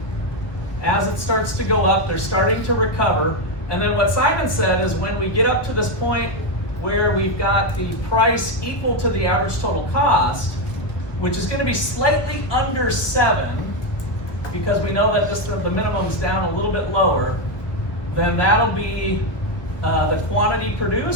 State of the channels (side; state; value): right; late; 1.2 ms